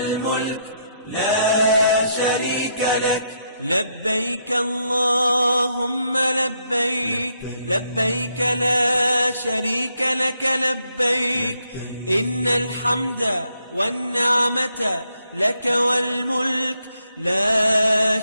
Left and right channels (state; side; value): inverted; both; correlation -0.76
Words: لا شريك لك. لبيك اللهم لبيك، لبيك لا شريك لك لبيك، إن الحمد والنعمة لك والملك لا